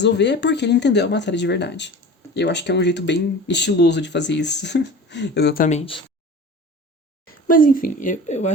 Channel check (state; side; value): normal; both; correlation 0.37